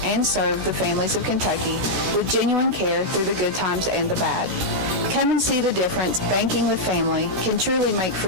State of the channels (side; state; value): left; late; 16 ms